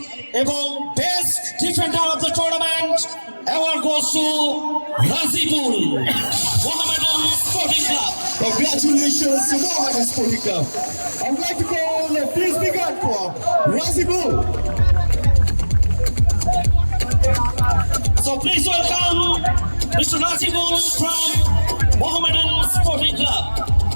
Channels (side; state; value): both; inverted; correlation -1.00